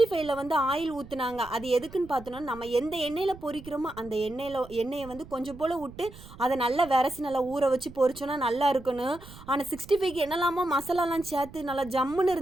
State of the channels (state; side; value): noise; right; rumble, 18 dB below the sound